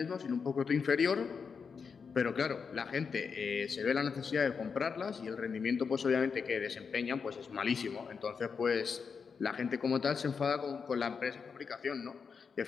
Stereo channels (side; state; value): right; quieter; 5.8 dB